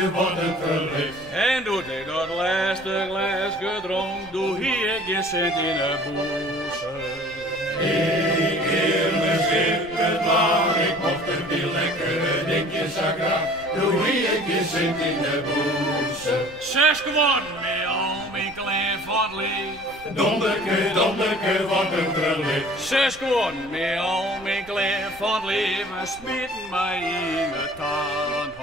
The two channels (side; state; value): right; noise; rumble, 23 dB below the sound